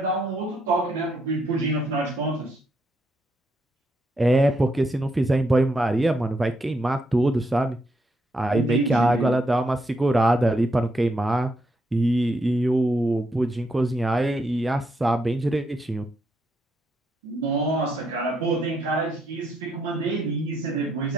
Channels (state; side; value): normal; both; correlation 0.78